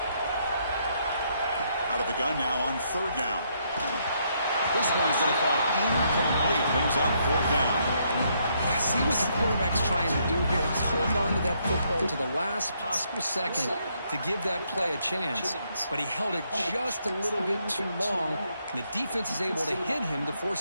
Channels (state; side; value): inverted; both; correlation -0.73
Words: Out of the gun now on third down. This one's going to fall incomplete. Brings up fourth down. See what the quarterback's trying to do here. He's holding on to that football to the last possible second to give that play a chance. But he held it just a little bit too long, and the defense is able to hit him to